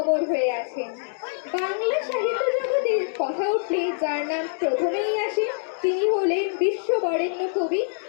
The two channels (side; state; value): right; silent; digital silence